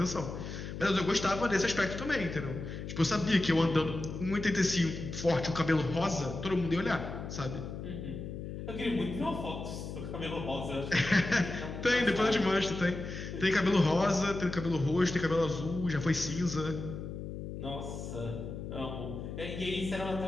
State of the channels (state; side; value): noise; left; hum, 7 dB below the sound